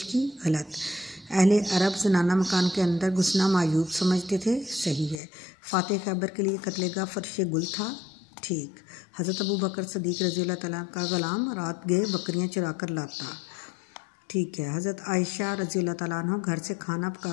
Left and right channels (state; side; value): drops out; right; at 5.2 s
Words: की। गलत। अहले अरब जनाना मकान के अंदर घुसना मायूब समझते थे। सही है। फ़ातिह खैबर के लिए कत्लेगा फर्श गुल था। ठीक। हज़रत अबू बकर सदीक़ रज़ी अल्लाह तआला का ग़ुलाम रात गए बकरियां चुरा कर लाता। ठीक है। हज़रत आयशा रज़ी अल्लाह तआला अन्हा घर से खाना